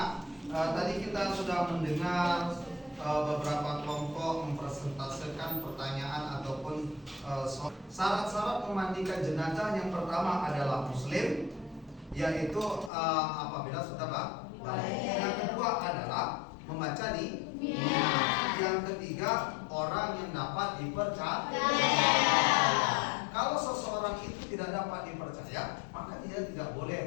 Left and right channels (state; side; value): drops out; right; at 12.9 s